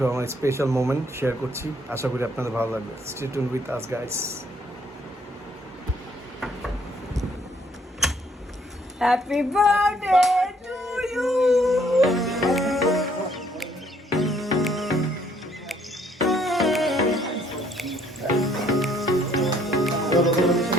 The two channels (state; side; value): normal; both; correlation 0.65